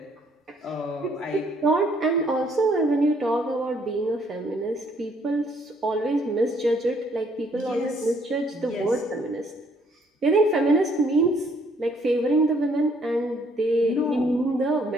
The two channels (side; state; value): both; normal; correlation 0.66